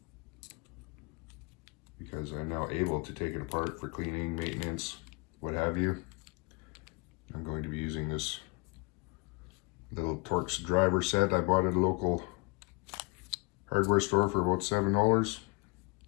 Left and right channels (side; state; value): right; quieter; 29.8 dB